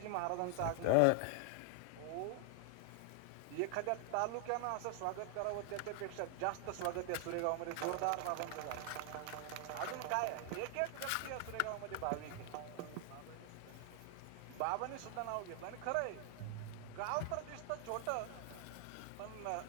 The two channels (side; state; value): both; different; correlation 0.00